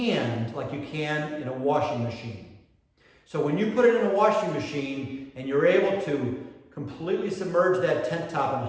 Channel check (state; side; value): identical; both; correlation 1.00